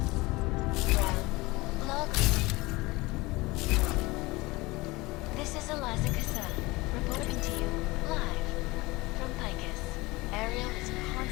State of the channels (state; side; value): quieter; right; 22.1 dB